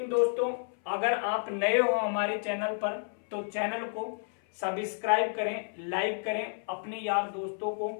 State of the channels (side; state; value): right; silent; 57 dB below the other